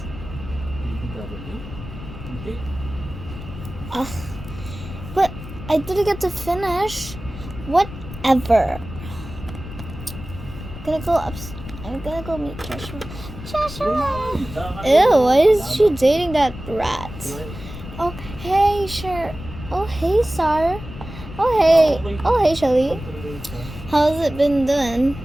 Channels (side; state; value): left; noise; rumble, 12 dB below the sound